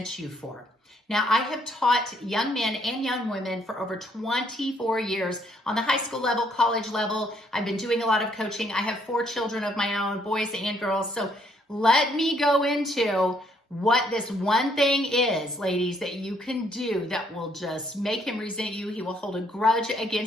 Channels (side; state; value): both; normal; correlation 0.68